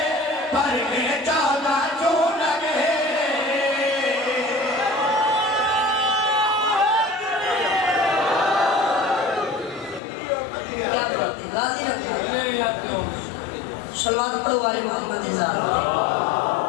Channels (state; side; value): drops out; right; at 10.0 s